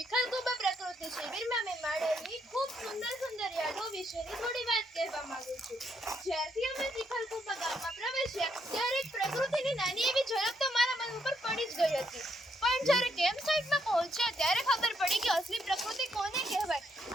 પ્રકૃતિ શિબિરમાં મેં માણેલી ખૂબ સુંદર યાદો વિશેની થોડી વાત કહેવા માંગુ છું. જ્યારથી અમે ચિખલકુબા ગામમાં પ્રવેશ્યા ત્યારે એક પ્રકૃતિની નાની એવી ઝલક તો મારા મન ઉપર પડી જ ગઈ હતી. પણ જ્યારે કેમ્પ સાઇટમાં પહોંચ્યા ત્યારે ખબર પડી કે અસલી પ્રકૃતિ કોને કહેવાય.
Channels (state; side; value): normal; both; correlation 0.75